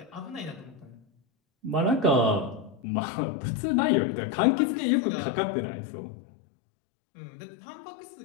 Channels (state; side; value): drops out; right; at 2.8 s